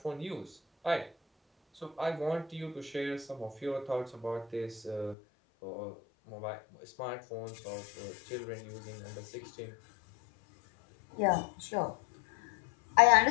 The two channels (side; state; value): right; drops out; at 5.2 s